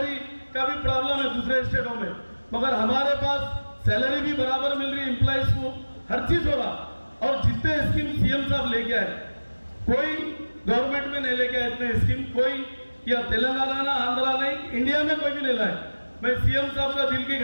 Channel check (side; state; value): both; inverted; correlation -1.00